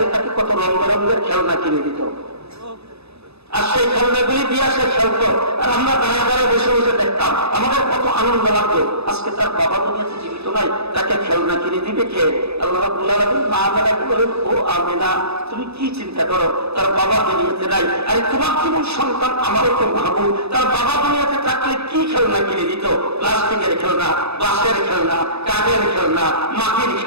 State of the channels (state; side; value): late; left; 0.79 ms